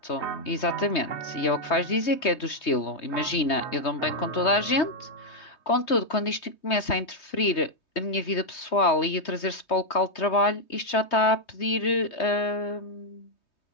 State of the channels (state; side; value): late; right; 3.2 ms